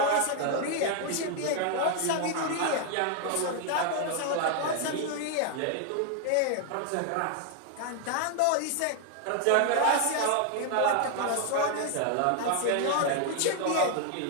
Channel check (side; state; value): both; different; correlation 0.00